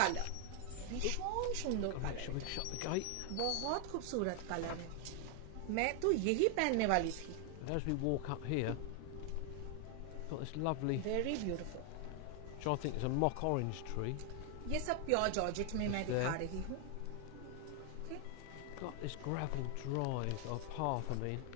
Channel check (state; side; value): different; both; correlation 0.00